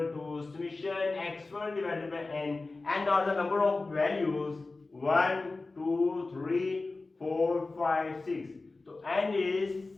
to summation x1 divided by n, and are the number of values 1, 2, 3, 4, 5, 6. So n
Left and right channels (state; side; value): quieter; right; 3.5 dB